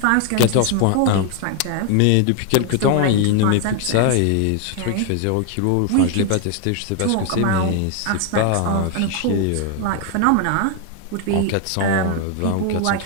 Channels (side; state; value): both; different; correlation 0.00